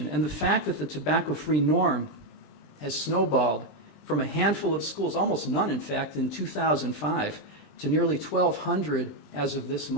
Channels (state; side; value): late; right; 20 ms